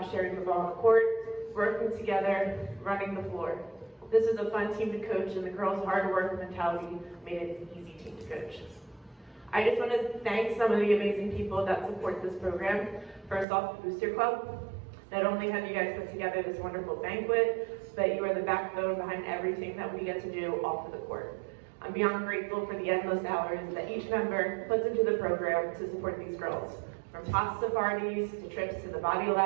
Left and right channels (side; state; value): left; drops out; at 13.5 s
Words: sharing the ball on the court, working together, running the floor. This was a fun team to coach, and the girls' hard work mentality made it an easy team to coach. I just want to thank some of the amazing people that support this program. First off, the Booster Club. Not only have you guys put together this wonderful banquet, but you are the backbone behind everything that we get to do off of the court. I'm beyond grateful for the endless hours that each member puts into the program to support these girls. From pasta parties, to trips to the body